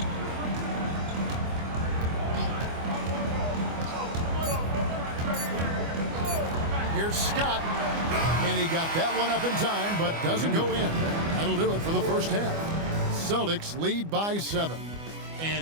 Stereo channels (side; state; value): left; late; 25 ms